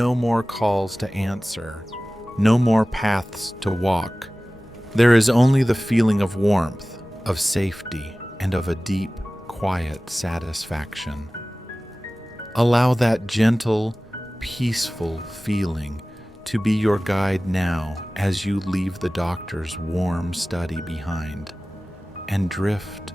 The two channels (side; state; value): both; normal; correlation 0.97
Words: more calls to answer, no more paths to walk. There is only the feeling of warmth, of safety, and of a deep, quiet satisfaction. Allow that gentle, peaceful feeling to be your guide now as you leave the doctor's warm study behind and drift